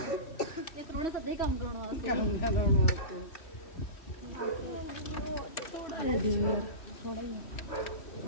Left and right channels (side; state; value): right; late; 3.1 ms